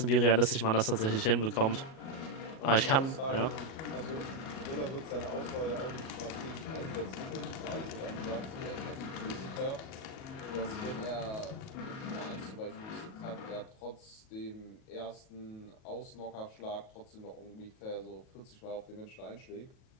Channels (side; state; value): right; late; 37 ms